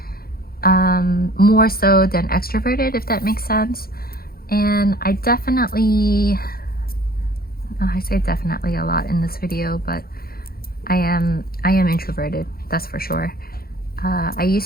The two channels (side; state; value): right; late; 0.44 ms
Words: more so than extroverted, if that makes sense. And I definitely, I say definitely a lot in this video, but I am introverted, that's for sure. I